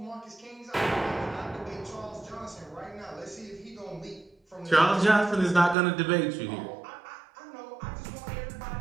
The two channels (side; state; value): left; drops out; at 5.8 s